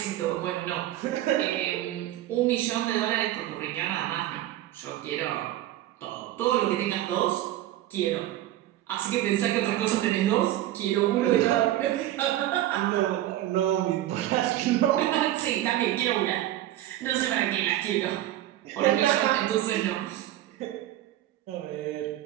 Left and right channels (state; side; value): quieter; left; 14.0 dB